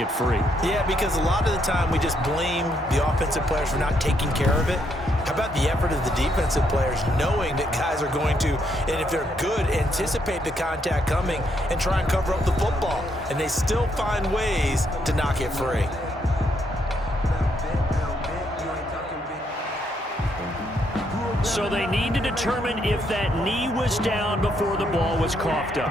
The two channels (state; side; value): normal; both; correlation 0.75